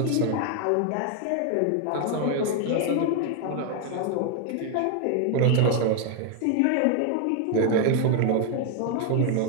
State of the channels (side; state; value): both; different; correlation 0.01